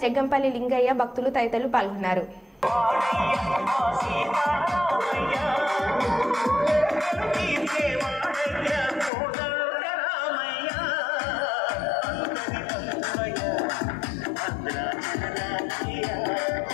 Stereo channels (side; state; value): right; drops out; at 9.1 s